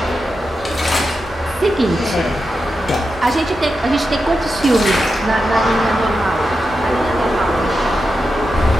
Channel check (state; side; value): normal; both; correlation 0.89